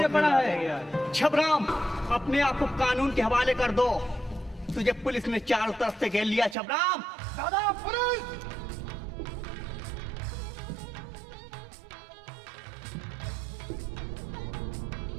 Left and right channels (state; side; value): drops out; left; at 6.6 s